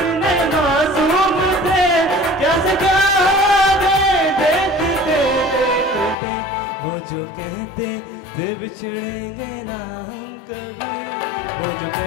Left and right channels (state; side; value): drops out; right; at 6.2 s